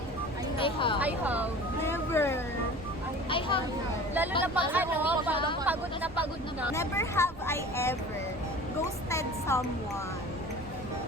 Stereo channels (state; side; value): noise; right; rumble, 17 dB below the sound